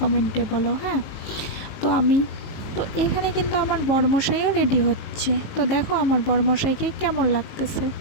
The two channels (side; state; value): right; late; 19 ms